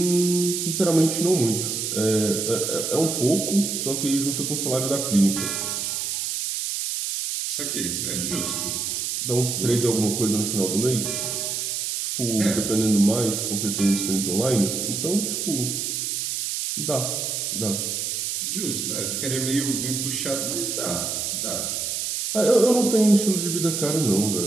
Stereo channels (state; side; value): noise; right; hiss, 2 dB below the sound